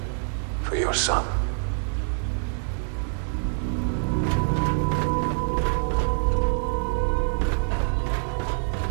for your son.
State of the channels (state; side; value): silent; left; 61 dB below the other